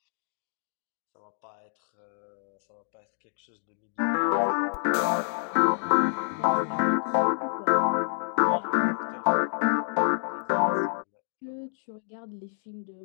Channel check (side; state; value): right; silent; digital silence